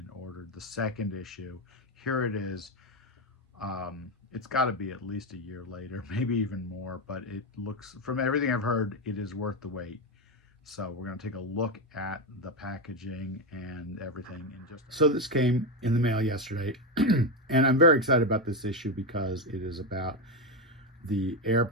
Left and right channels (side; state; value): both; normal; correlation 0.11